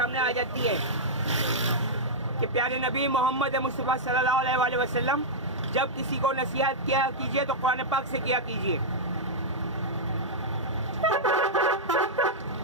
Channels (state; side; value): normal; both; correlation -0.08